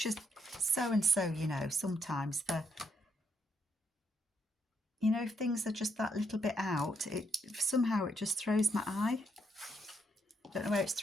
a so-and-so, you know, sometimes you know, if things are just that little bit out, somehow it just throws my eye. Don't know where it's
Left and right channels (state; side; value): normal; both; correlation 0.76